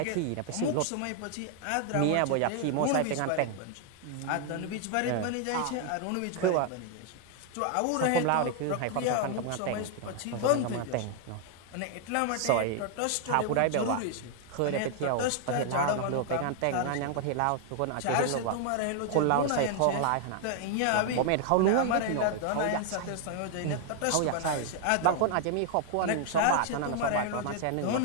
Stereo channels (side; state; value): both; different; correlation 0.00